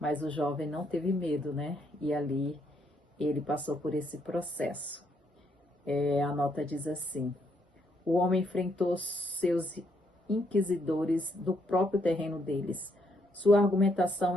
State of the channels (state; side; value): normal; both; correlation 0.74